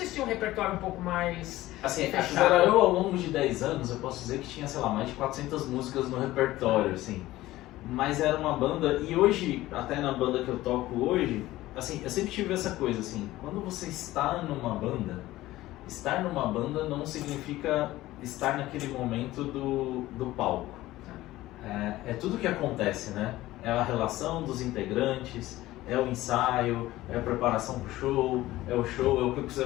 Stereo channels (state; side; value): quieter; right; 16.6 dB